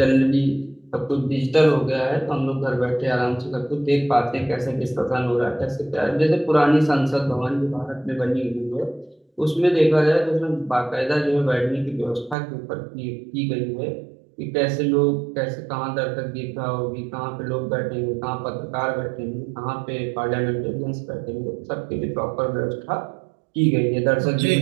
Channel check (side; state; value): left; drops out; at 12.4 s